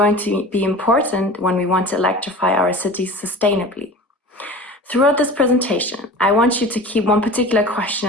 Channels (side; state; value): both; normal; correlation 0.37